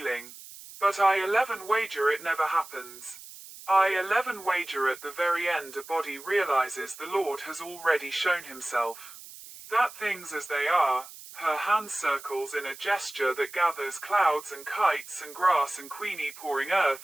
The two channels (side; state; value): right; noise; hiss, 16 dB below the sound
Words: But I 11 wager it never happens. I 11 wager at the very end a body realizes the Lord has already shown himself. That things as they are, her hand circles in a gesture that gathers clouds and kites and grass and Queenie pouring